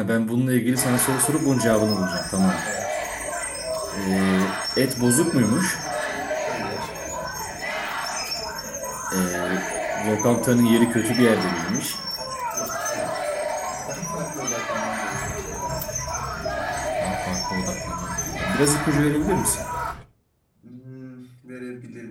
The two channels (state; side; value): identical; both; correlation 1.00